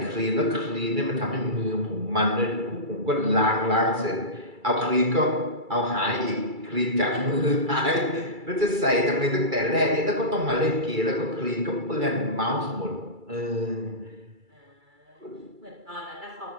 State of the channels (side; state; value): left; late; 2.3 ms